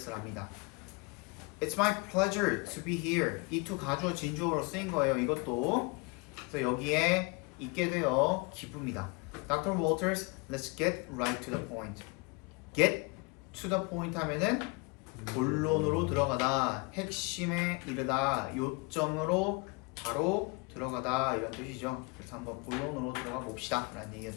It's my pleasure to be here. 이 to 가주어 진주어로 쓰인 거예요. 이것도. 그래서 여기에 있게 되어 기쁩니다. Dr. Walters, let's get right to the point. Get to the point 하면은 본론으로 들어가다, 핵심에 이르다, 요점으로 바로 들어가다 이런 뜻이죠. 그래서 한번 본론으로 들어가 봅시다 라는 얘기가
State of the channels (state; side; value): quieter; right; 28.7 dB